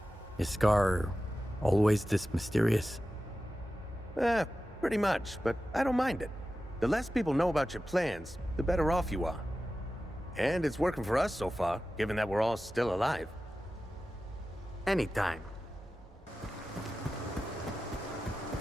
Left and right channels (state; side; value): normal; both; correlation 0.94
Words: Is Scar always this mysterious? Pretty much, but I don't mind it. The less people know about your plans, the better off you are. And it's working for us so far, given that we're all still alive. Anytime.